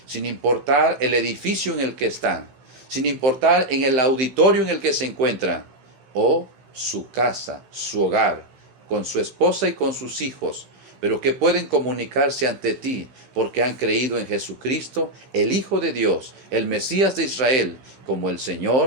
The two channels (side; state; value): left; late; 15 ms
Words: sin importar el edificio en el que están, sin importar en el auditorio en el que se encuentran, o su casa, su hogar, con su esposa y con sus hijos, pero que pueden comunicarse ante ti porque han creído en Jesucristo, el Hijo de Dios, el Mesías de Israel, como el